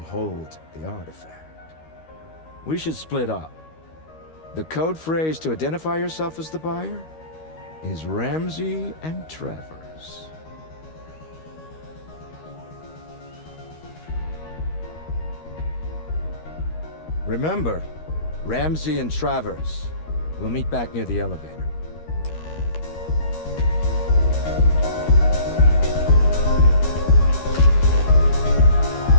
the artifact. We should split up. The code phrase to identify yourself as the buyer is Ramsey and Travers. Remember, Ramsey and Travers. We'll meet back near the elevator.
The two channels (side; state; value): right; late; 13 ms